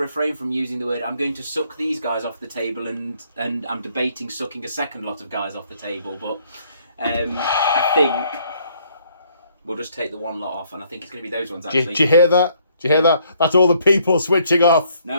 from using the word. I'm going to suck these guys off the table, and I'm debating sucking a second lot of guys off the table. But I think we'll just take the one lot off, and I think it's going to be those ones. Actually, do you hear that? Do you hear that? That's all the people switching off.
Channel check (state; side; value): inverted; both; correlation -0.66